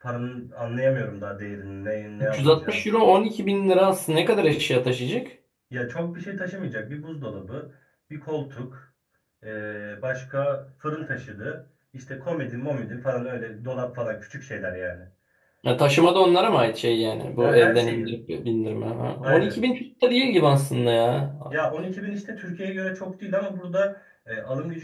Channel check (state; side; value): identical; both; correlation 1.00